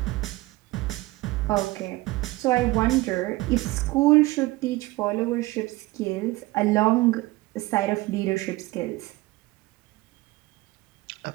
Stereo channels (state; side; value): quieter; left; 19.8 dB